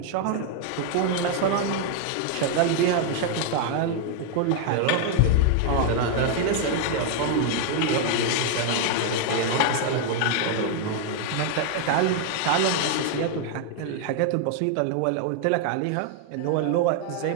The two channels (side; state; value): both; different; correlation 0.00